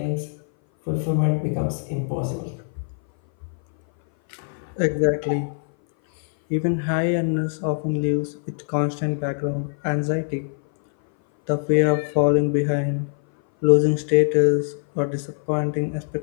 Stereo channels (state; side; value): silent; right; 59 dB below the other